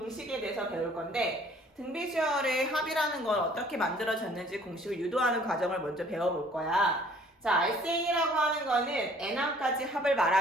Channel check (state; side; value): normal; both; correlation 0.56